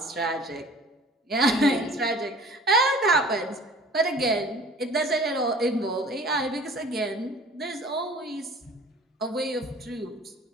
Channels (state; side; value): normal; both; correlation 0.47